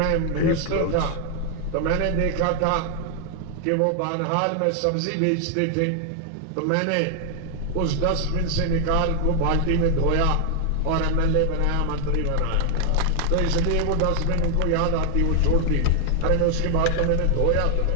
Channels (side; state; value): both; different; correlation 0.00